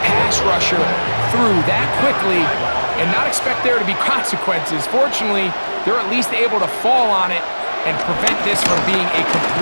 pass rusher through that quickly and not expect there to be consequences. Fortunately, they're at least able to fall on it and prevent this from being a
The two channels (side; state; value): both; inverted; correlation -1.00